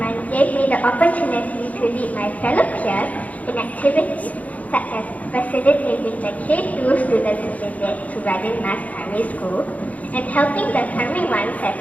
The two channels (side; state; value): right; late; 0.072 ms